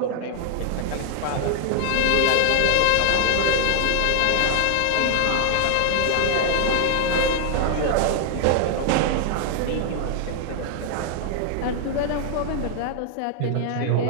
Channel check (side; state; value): both; different; correlation 0.00